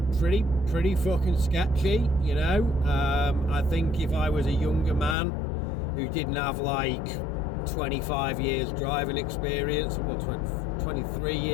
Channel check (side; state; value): right; drops out; at 5.2 s